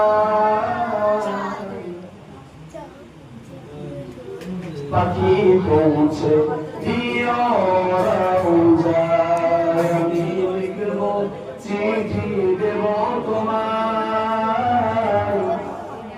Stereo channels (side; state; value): both; identical; correlation 1.00